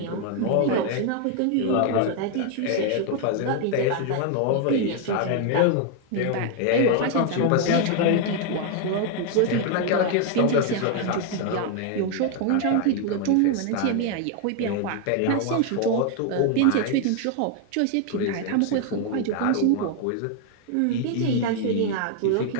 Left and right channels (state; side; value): different; both; correlation 0.00